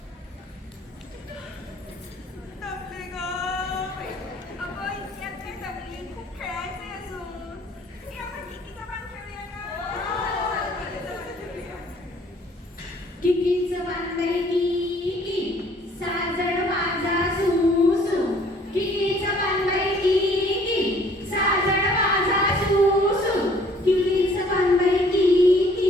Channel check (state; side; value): normal; both; correlation 0.58